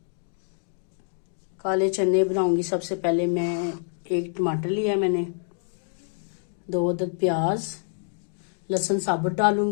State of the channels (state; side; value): silent; right; digital silence